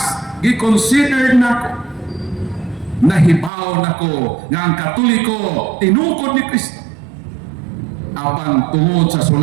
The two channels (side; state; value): left; drops out; at 3.5 s